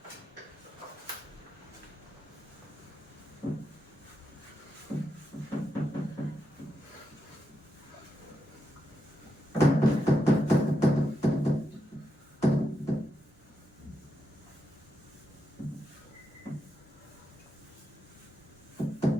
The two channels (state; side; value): normal; both; correlation 0.84